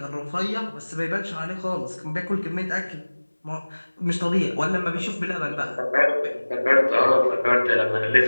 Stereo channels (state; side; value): inverted; both; correlation -1.00